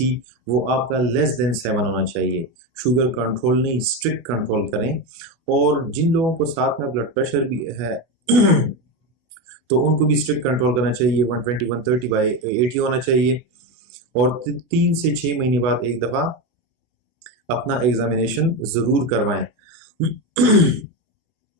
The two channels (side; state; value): left; late; 25 ms